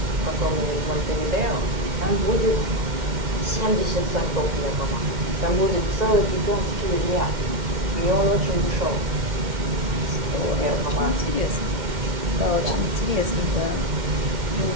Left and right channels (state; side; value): late; left; 2.1 ms